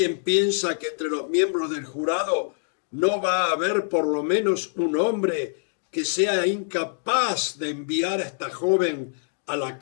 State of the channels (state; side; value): silent; right; digital silence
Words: piensa que entre los miembros del jurado no va a haber por lo menos un hombre que sea incapaz de enviar a esta joven a la